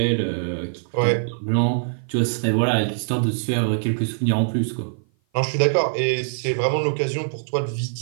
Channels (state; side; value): silent; left; 55 dB below the other